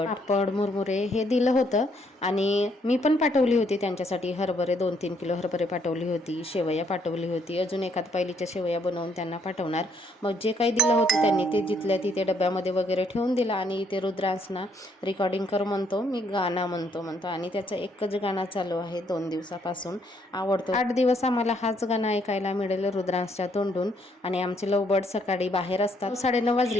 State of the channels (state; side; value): normal; both; correlation 0.70